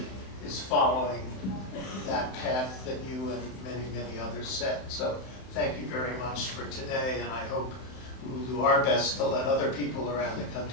is following that path that you and many, many others set. So thank you very much for today, and I hope we will do our best to let other people around the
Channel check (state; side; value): late; right; 31 ms